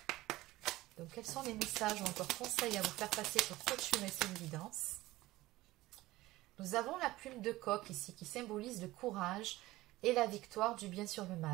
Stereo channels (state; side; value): quieter; left; 17.9 dB